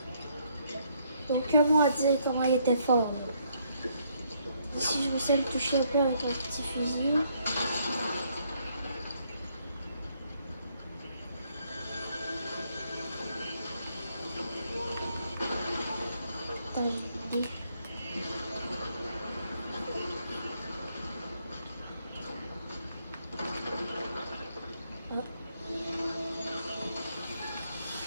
Donc, comment dire comment il était fort? Si je me sais le toucher un peu avec un petit fusil. Attends, j'ai une idée. Ah.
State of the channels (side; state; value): both; inverted; correlation -0.71